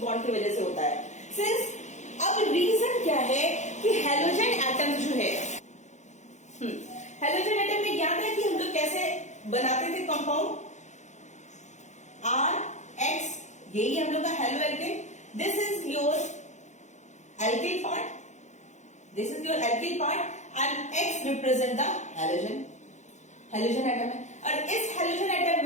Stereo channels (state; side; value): late; right; 0.34 ms